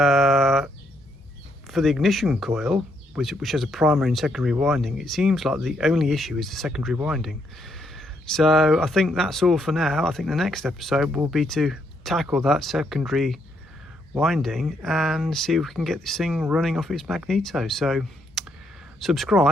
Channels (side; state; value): both; normal; correlation 0.74